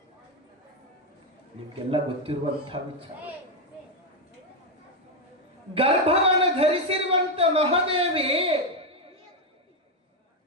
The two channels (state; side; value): normal; both; correlation 0.04